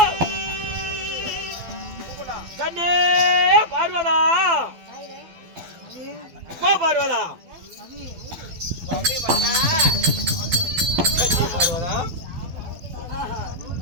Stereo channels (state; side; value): late; left; 12 ms